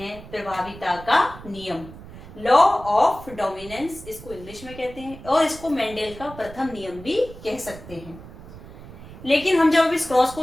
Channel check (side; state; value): right; noise; rumble, 16 dB below the sound